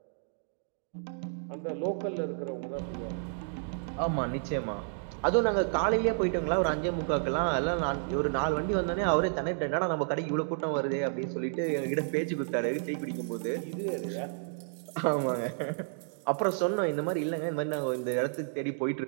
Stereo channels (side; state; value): left; silent; digital silence